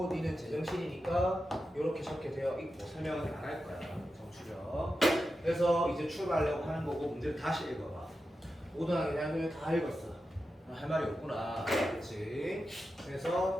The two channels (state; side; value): normal; both; correlation 0.90